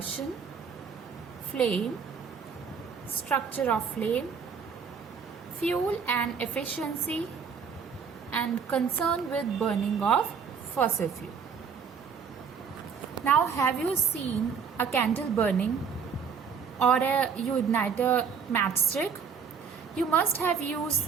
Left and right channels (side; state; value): left; quieter; 6.3 dB